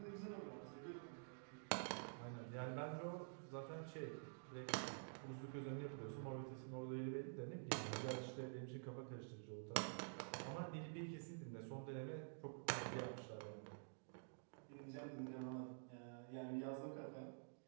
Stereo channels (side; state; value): left; silent; digital silence